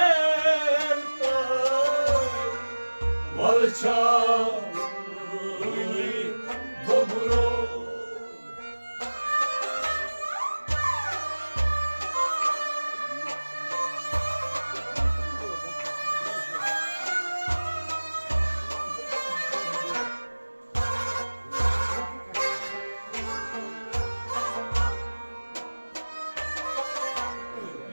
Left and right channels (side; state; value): both; inverted; correlation -1.00